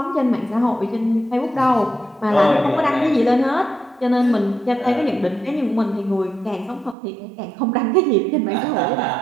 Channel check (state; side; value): drops out; left; at 7.0 s